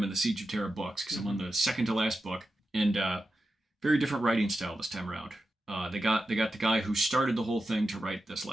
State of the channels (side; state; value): both; normal; correlation 0.90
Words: in the Siege of Terra books, because I'm on the second to last book, and very different writing style this time around. They got the guy who started the whole thing to write this